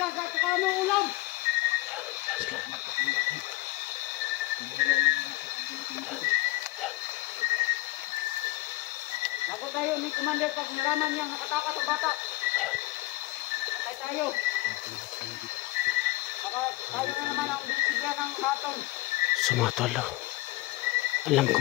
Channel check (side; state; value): right; quieter; 19.6 dB